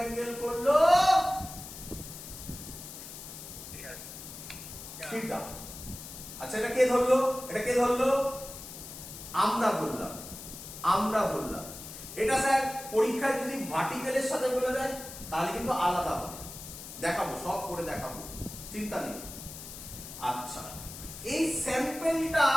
করলো থিটা। আচ্ছা এটা কে ধরলো? এটা কে ধরলো? আমরা ধরলাম। এটা স্যার পরীক্ষায় যদি ভার্টিক্যালের সাথে বলে দেয় তাহলে কিন্তু আলাদা হবে, দেখাবো, সব করে দেখাবো, চিন্তা নেই। আচ্ছা, এই স্যাম্পেলটা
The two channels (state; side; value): noise; left; hiss, 12 dB below the sound